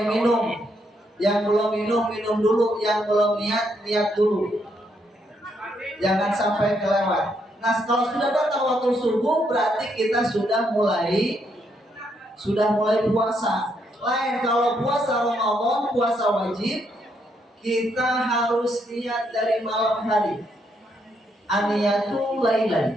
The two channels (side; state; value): both; normal; correlation 0.76